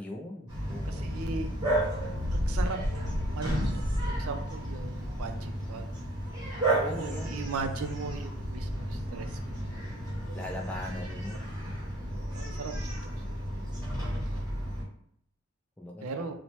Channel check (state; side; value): normal; both; correlation 0.60